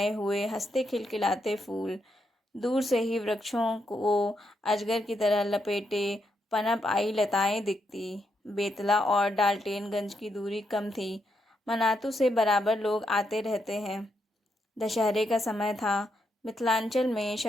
हुए हंसते खिलखिलाते फूल। दूर से ही वृक्षों को अजगर की तरह लपेटे पनप आई लताएं दिखती। बेतला और डाल्टेनगंज की दूरी कम थी। मनातू से बराबर लोग आते रहते हैं। दशहरे का समय था। मिथिलांचल में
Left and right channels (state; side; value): normal; both; correlation 0.81